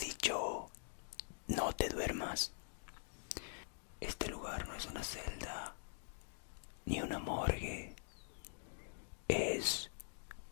no te duermas. Este lugar no es una celda ni una morgue. Es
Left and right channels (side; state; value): right; silent; digital silence